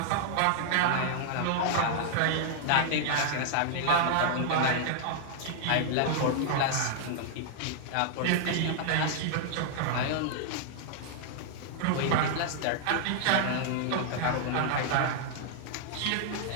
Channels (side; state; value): both; different; correlation -0.01